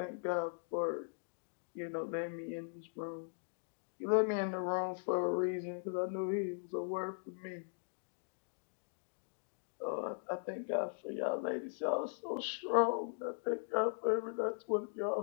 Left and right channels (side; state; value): right; silent; digital silence